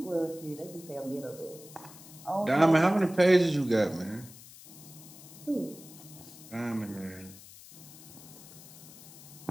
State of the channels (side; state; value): left; noise; hiss, 18 dB below the sound